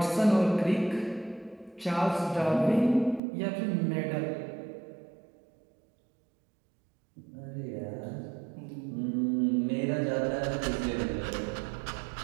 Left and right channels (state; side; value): drops out; left; at 3.2 s